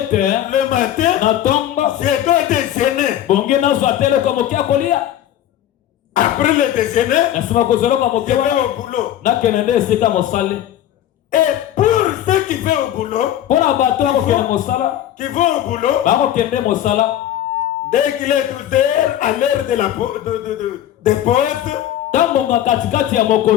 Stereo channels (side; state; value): right; quieter; 11.8 dB